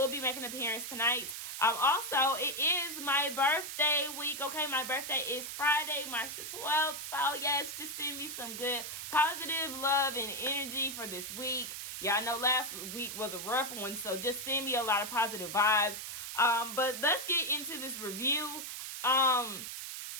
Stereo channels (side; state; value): right; noise; hiss, 7 dB below the sound